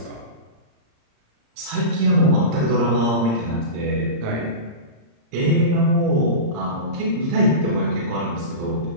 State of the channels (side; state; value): left; late; 35 ms